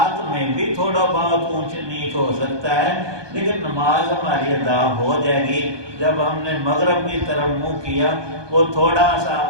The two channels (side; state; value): left; late; 1.2 ms